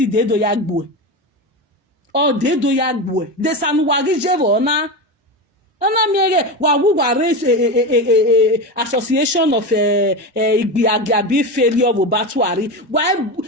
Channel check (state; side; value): normal; both; correlation 0.20